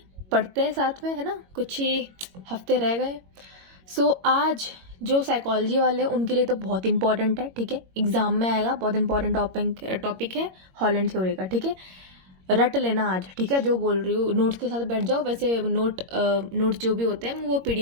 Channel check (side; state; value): left; late; 21 ms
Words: पढ़ते हैं साथ में, है ना। कुछ ही हफ्ते रह गए। सो आज जो साइकोलॉजी वाले हैं उनके लिए तो बहुत इंपॉर्टेंट है। ठीक है, एग्जाम में आएगा, बहुत इंपॉर्टेंट टॉपिक है हॉलैंड थ्योरी का। ठीक है, रट लेना आज। ठीक है, जो बोल रही हूँ नोट्स के साथ बैठ जाओ। वैसे नोट्स जो भी होते हैं वो